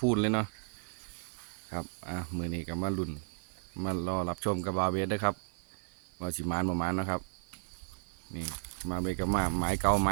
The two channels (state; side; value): silent; left; 55 dB below the other